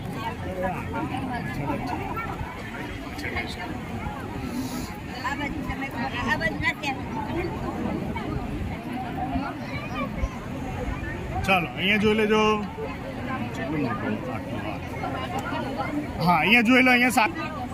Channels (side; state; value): both; identical; correlation 1.00